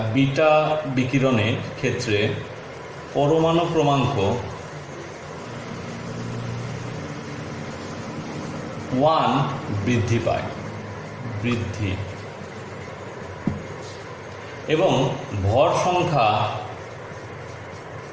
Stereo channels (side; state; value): both; identical; correlation 1.00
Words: বিটা বিকিরণের ক্ষেত্রে পরমাণু ক্রমাঙ্ক 1 বৃদ্ধি পায়, এবং ভর সংখ্যা